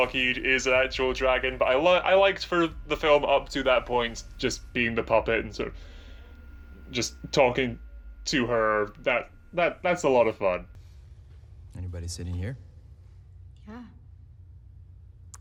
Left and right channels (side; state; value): both; identical; correlation 1.00